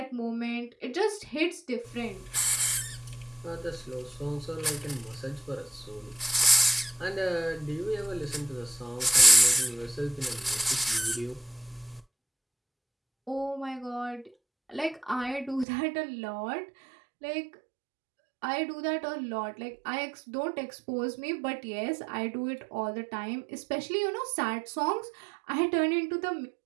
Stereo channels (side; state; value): left; drops out; at 15.7 s